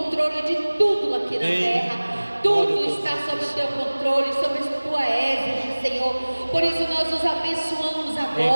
de tudo aqui na Amém. terra. Tudo Glória a está Deus. sob o teu controle, sob a tua égide, Senhor. Por isso nós os abençoamos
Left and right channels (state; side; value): inverted; both; correlation -1.00